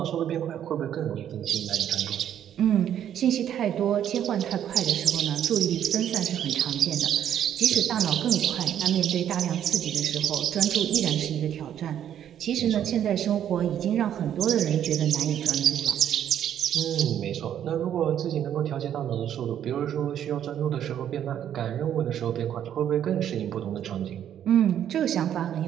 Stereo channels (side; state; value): left; quieter; 10.1 dB